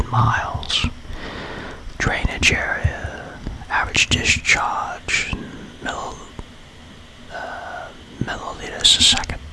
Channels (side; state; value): both; identical; correlation 1.00